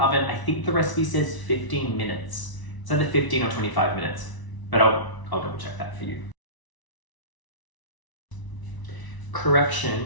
I think the recipe says 15 minutes. It's either 15 or 25 minutes, but I'll double check that for you. Correction,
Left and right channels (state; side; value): late; right; 1.0 ms